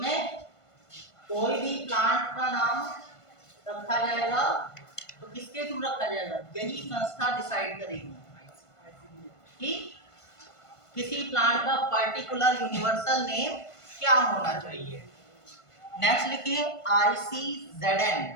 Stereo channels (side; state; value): right; late; 1.5 ms